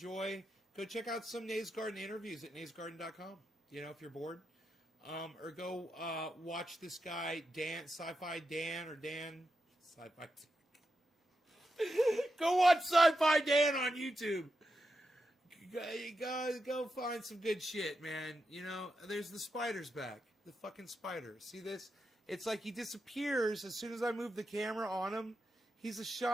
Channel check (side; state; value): both; normal; correlation 0.87